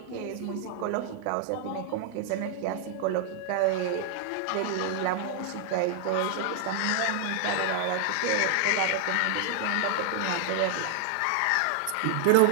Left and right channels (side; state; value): both; different; correlation 0.00